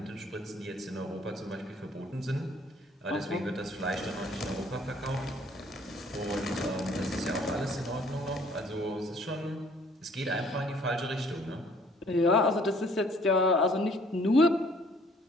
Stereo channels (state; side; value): normal; both; correlation 0.59